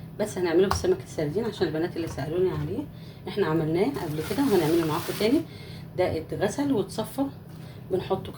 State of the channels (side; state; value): both; identical; correlation 1.00